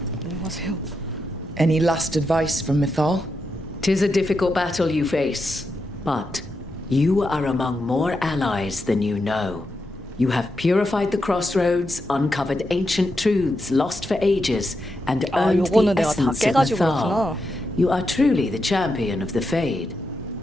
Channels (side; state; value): both; normal; correlation 0.86